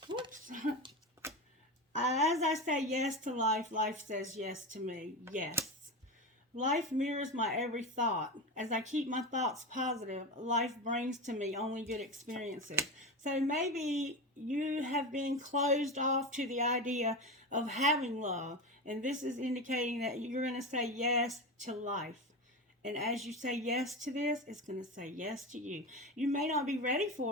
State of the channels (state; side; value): normal; both; correlation 0.22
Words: Whoops. As I say yes to life, life says yes to me. Yes. Life mirrors my every thought. As I keep my thoughts positive, life brings to me only good experiences. So maybe you have been closed off to the idea of having love. And this is indicating that you're going to say yes to life. And as you say yes to this, it's going to say yes to you. You may not be ready